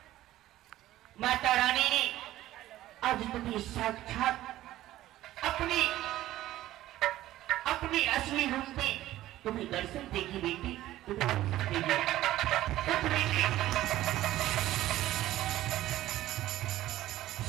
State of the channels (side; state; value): left; quieter; 14.8 dB